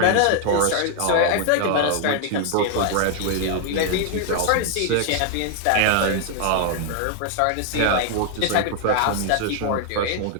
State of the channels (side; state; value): both; different; correlation 0.00